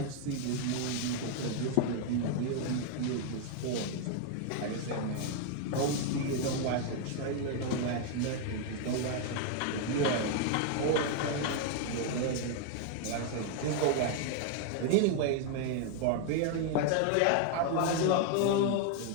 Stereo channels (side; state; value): both; different; correlation 0.01